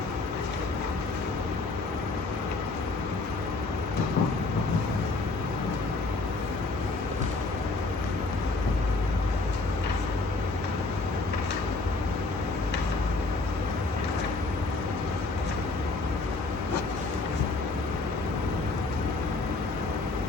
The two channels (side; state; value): right; quieter; 3.5 dB